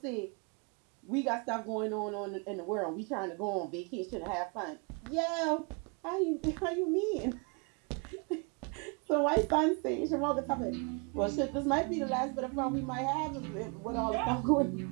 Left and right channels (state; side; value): quieter; left; 33.5 dB